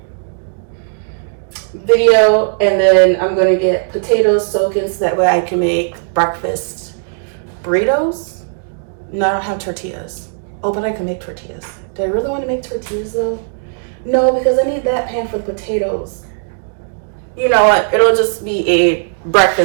video, and then I'm gonna get potatoes soaking so that way I can make breakfast burritos. No, I don't have tortillas. Oh, but I can make tortillas. Do I really want to make tortillas though? No, because I need that pan for the potatoes. You know what? It'll just be a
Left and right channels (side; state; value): left; silent; digital silence